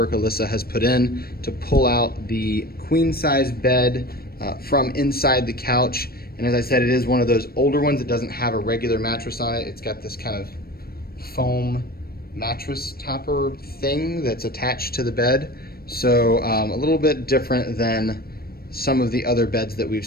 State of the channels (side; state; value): right; late; 0.44 ms